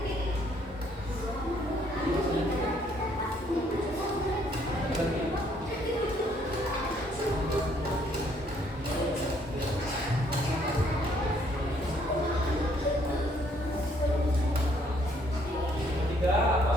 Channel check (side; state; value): both; normal; correlation 0.66